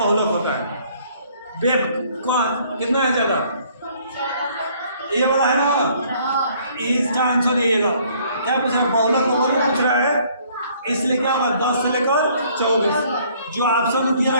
होता है, बेब कौन कितना है ज्यादा, ये वाला है ना, इसका आंसर ये लो, क्या पूछ रहा है, बहुलक का वर्ग पूछ रहा है, इसलिए क्या होगा 10 से लेकर 24, जो ऑप्शन दिया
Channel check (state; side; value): inverted; both; correlation -0.61